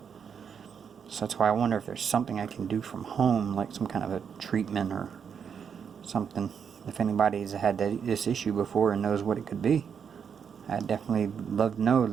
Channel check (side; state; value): left; quieter; 7.1 dB